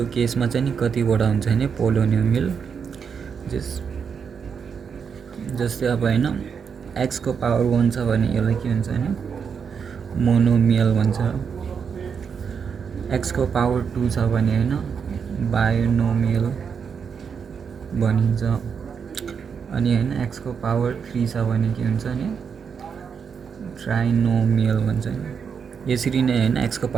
केसमा चाहिँ नि कतिवटा हुन्छ भने पोलिनोमियल जस्तै अब हैन x को पावर 1 छ भने यसलाई के भन्छ भने मोनोमियल भन्छ। x को पावर 2 छ भने हैन बाइनोमियल भनिन्छ। अनि हैन x को पावर 3 छ भने के हुन्छ भने ट्राइनोमियल भन्छ। यसरी नै हैन x को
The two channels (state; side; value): quieter; left; 6.5 dB